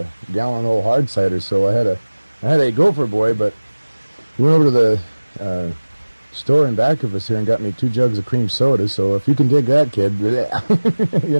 gallon old hard cider, so I had a gopher boy. But we went over to the store in back of us here and got me 2 jugs of cream soda. So if you can dig that, kid, you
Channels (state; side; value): inverted; both; correlation -1.00